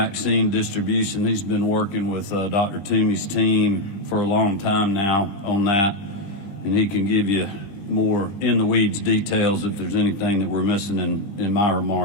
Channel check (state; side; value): late; right; 20 ms